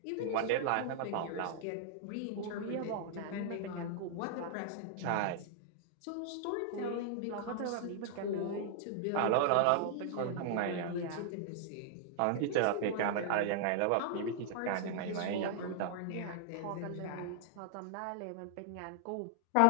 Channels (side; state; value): both; different; correlation -0.01